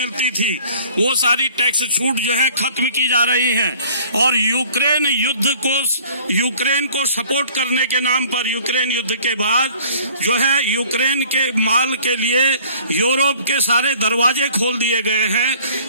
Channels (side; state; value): both; inverted; correlation -0.52